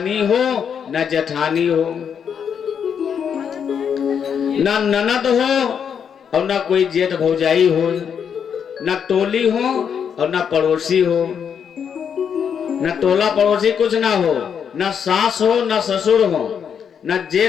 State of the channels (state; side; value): quieter; right; 7.5 dB